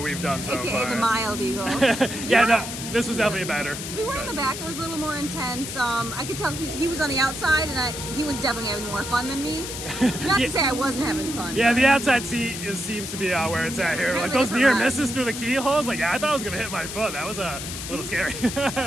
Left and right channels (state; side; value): noise; left; hiss, 7 dB below the sound